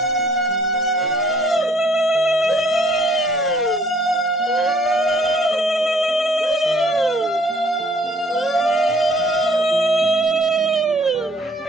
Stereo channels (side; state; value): both; normal; correlation 0.59